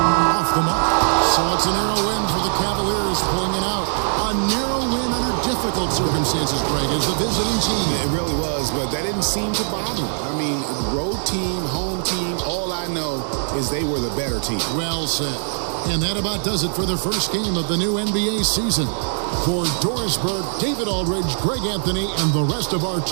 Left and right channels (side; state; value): left; silent; 62 dB below the other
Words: the mark. So it's a narrow win for the Cavaliers, pulling it out. A narrow win under difficult circumstances, Greg, as the visiting team. It really was, but that didn't seem to bother them. I mean, road team, home team, all I know is they were the better team. Well said. And that about does it for the first game of the new NBA season. For Dorisberg, David Aldridge, Greg Anthony, and the rest of our